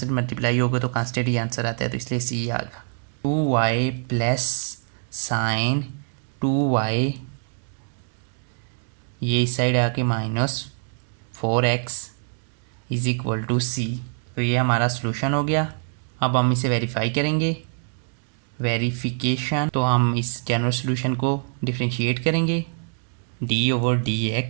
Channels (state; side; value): silent; left; 59 dB below the other